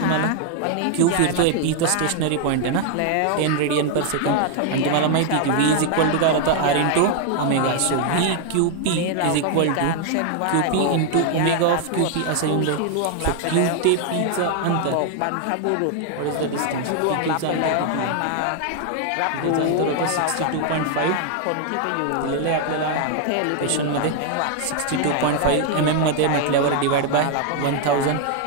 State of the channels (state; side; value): different; both; correlation 0.00